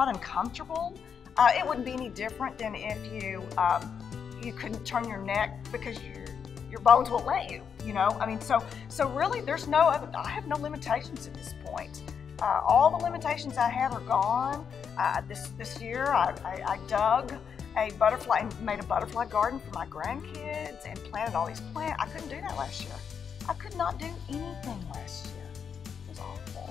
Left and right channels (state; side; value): quieter; right; 7.0 dB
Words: uncomfortable. It wouldn't be any different than if you couldn't turn your neck because your bones won't let you. You know, I mean, so really, there's no other. I have no limitations at this point. All the limitations I have are gone. This year, I dug a butterfly and made a butterfly garden for my grandkids and planted all these plants. I couldn't do that last year. I could not do anything last year. It was